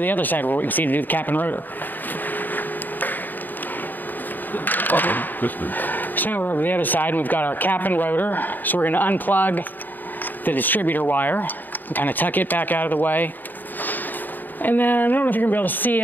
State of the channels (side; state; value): right; late; 0.089 ms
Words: other side where we can see to do the cap and rotor. So now we're over the other side and we've got our cap and rotor. So we're going to unplug the distributor wire and kind of tuck it back out of the way. And then, I don't know if you're going to be able to see